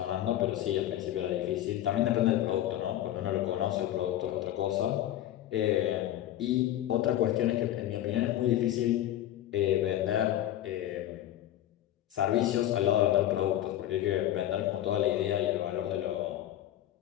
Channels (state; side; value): quieter; right; 12.8 dB